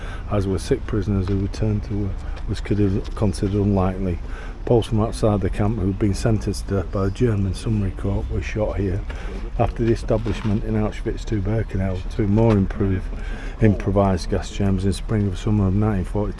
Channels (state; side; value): identical; both; correlation 1.00